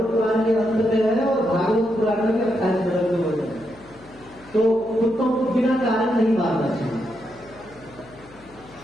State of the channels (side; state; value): left; noise; hum, 25 dB below the sound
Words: पुराण के अंत में है और भागवत पुराण में 28 नंबर में होता है। तो कुत्तों को बिना कारण नहीं मारना चाहिए।